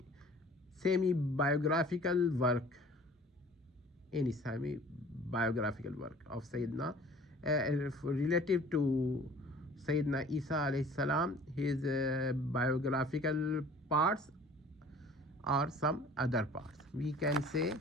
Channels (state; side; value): normal; both; correlation 0.49